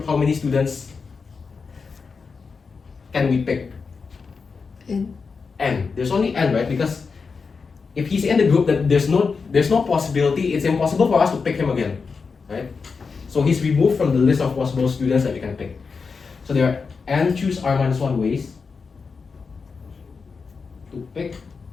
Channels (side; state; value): right; quieter; 5.0 dB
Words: how many students can we pick? N. N. There's only n, right? Because if he's in the group, then there's no possibility. It's impossible for us to pick him again, right? So he's removed from the list of possible students that we can pick. So there are n choose R minus 1 ways to pick